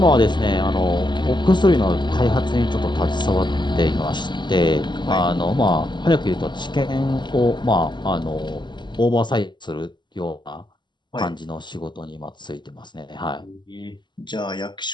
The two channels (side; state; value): right; late; 0.22 ms